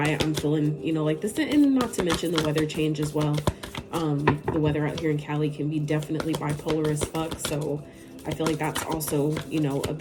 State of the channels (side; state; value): both; identical; correlation 1.00